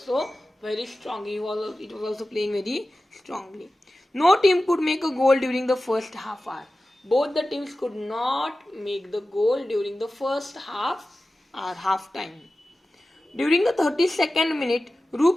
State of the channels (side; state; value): both; normal; correlation 0.95